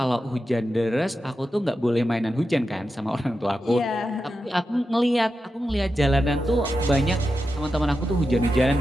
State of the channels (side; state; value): both; normal; correlation 0.90